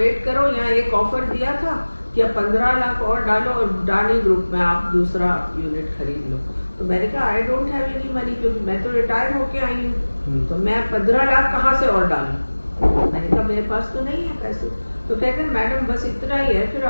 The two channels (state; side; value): inverted; both; correlation -1.00